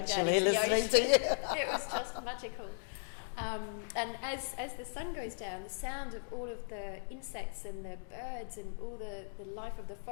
listening to you. It was just magical. And as the sun goes down, the sound of all of the insects and the birds and all the life of the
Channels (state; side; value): silent; right; digital silence